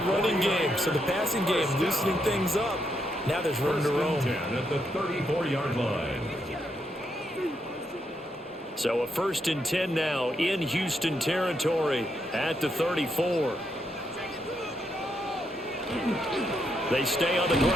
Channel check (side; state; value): both; normal; correlation 0.79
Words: running game. So the passing game loosening things up. Now there's room to roam. At the 34-yard line. So a 1st and 10 now in Houston territory at the 34. They stay on the